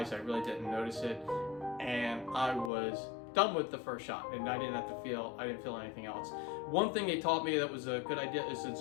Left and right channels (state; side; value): drops out; right; at 2.7 s